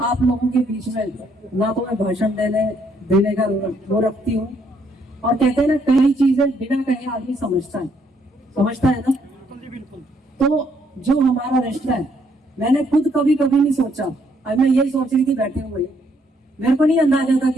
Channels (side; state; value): both; normal; correlation 0.70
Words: आप लोगों के बीच में ना तो मैं भाषण देने का वो रखती हूँ, और कहते हैं ना कई चीजें बिना कहे आदमी समझता है ना। तो जो हमारा रिश्ता है, मैंने खुद कभी नहीं सोचा, अब मैं यही सोच रही थी बैठे हुए, मेरे को नहीं अंदाजा था